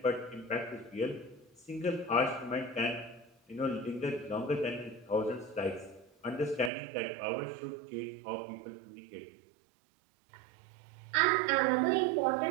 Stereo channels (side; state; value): left; drops out; at 6.7 s